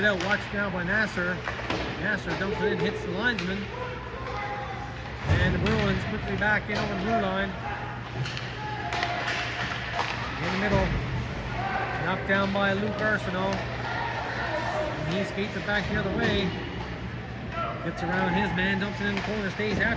out. Watched now by Nasser. Nasser dumps it in, hits the linesman. And the Bruins quickly back in over the blue line. In the middle. Knocked down by Luke Arsenault. And he skates it back the other way. Gets around his man, dumps it in the corner, stays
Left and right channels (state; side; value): identical; both; correlation 1.00